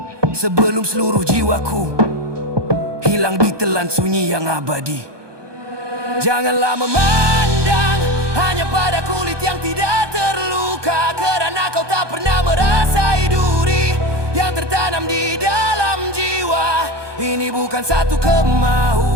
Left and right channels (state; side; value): late; left; 1.2 ms